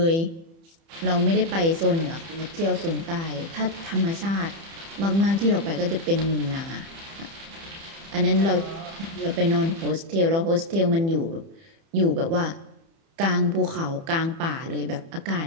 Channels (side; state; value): left; late; 30 ms